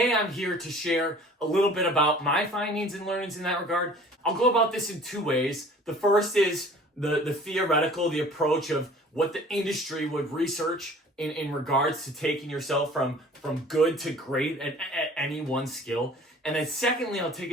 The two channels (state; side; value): normal; both; correlation 0.48